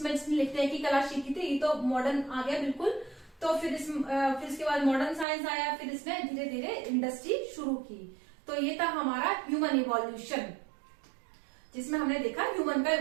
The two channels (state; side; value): drops out; left; at 5.2 s